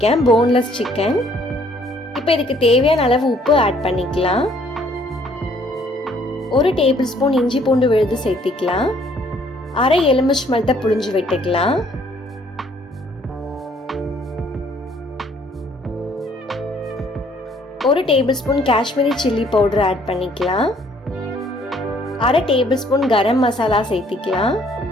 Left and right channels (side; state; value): both; normal; correlation 0.62